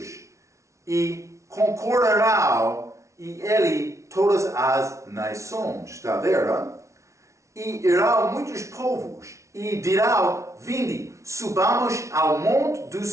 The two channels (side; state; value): left; late; 0.14 ms